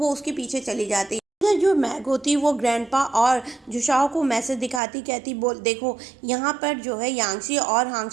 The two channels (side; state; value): left; drops out; at 4.8 s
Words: उसके पीछे चली जाती। इधर जो मैग होती वो ग्रैंडपा और जुशाओ को मैसेज दिखाती, कहती बोल देखो यहाँ पर जो है यांगची और